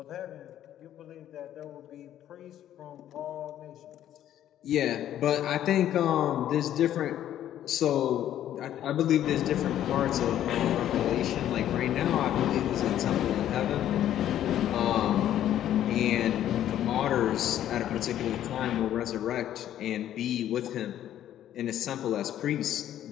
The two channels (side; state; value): right; quieter; 11.5 dB